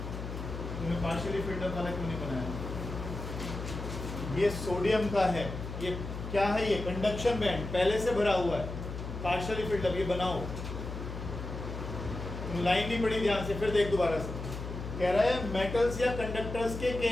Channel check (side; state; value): left; noise; hum, 7 dB below the sound